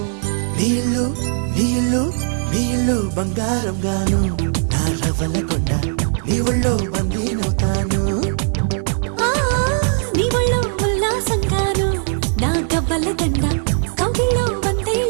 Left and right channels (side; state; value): left; silent; 61 dB below the other